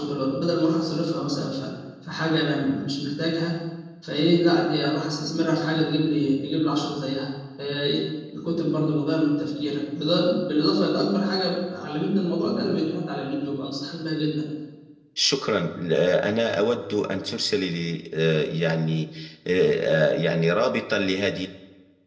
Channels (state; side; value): identical; both; correlation 1.00